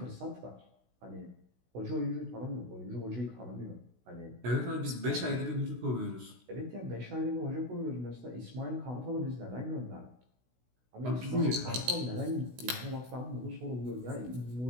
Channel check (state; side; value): late; left; 16 ms